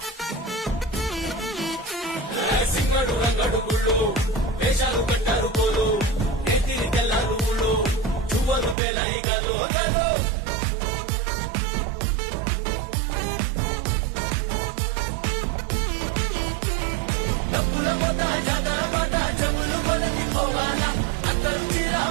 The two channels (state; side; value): drops out; left; at 8.8 s